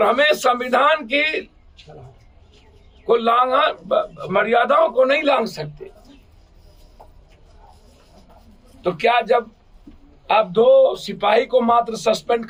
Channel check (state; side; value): identical; both; correlation 1.00